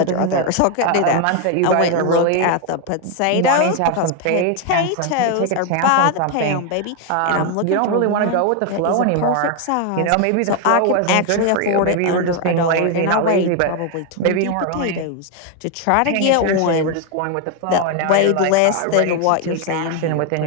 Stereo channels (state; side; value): different; both; correlation 0.01